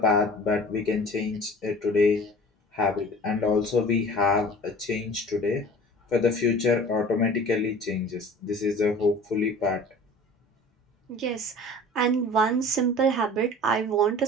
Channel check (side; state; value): both; normal; correlation 0.43